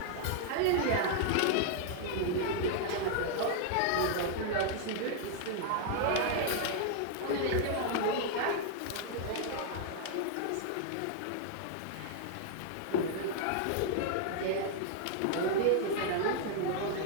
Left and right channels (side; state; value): both; different; correlation 0.00